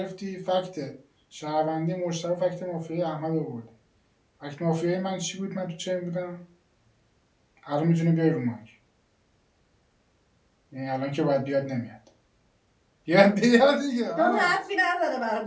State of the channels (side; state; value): both; identical; correlation 1.00